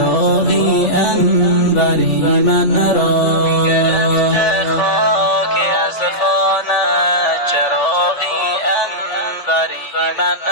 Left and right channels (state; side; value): late; right; 3.4 ms